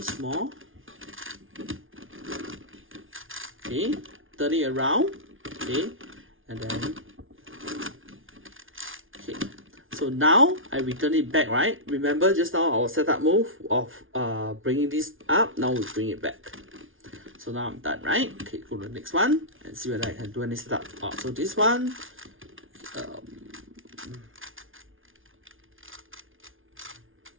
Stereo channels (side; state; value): left; late; 0.58 ms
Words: more. Okay, turn it around. Okay, and then okay. So now I return it back, right? Remember just now our setup move of bringing this up. Now we bring it back. So now I'm done, right? Okay, go to the next one and see whether I can do any setup. So this one,